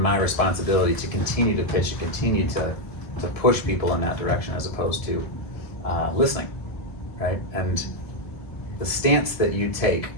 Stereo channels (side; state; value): right; late; 1.7 ms